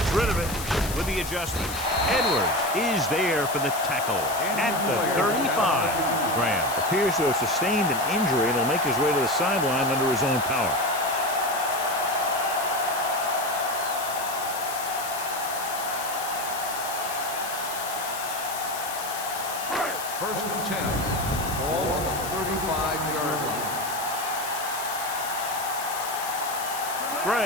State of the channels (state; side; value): noise; left; hiss, 8 dB below the sound